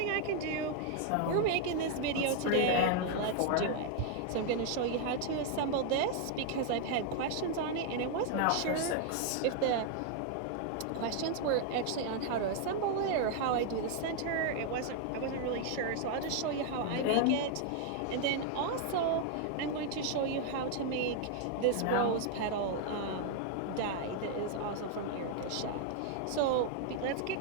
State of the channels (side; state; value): both; different; correlation 0.00